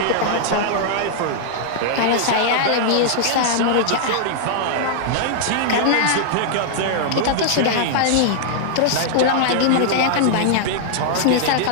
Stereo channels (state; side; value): different; both; correlation -0.01